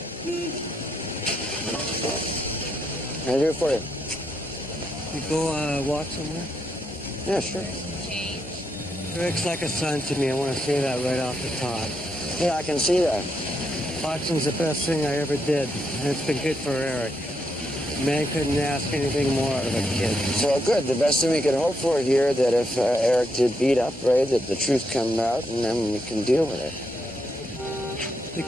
What can I do for you? You go walk somewhere? Yeah, sure. Eric's like a son to me. I want to say that right off the top. Yeah, I can see that. Boxing's the best thing I ever did, and it's been good for Eric. Man couldn't ask anything more out of a kid. So good. The best thing we could hope for here that if Eric did beat up Ray, that the truth comes out and then we can deal with it. The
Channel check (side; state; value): both; normal; correlation 0.79